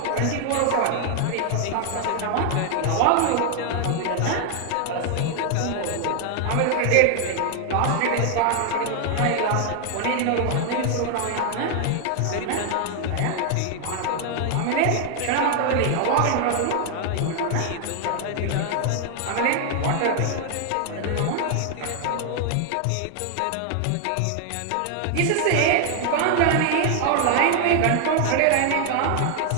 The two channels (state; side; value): different; both; correlation 0.00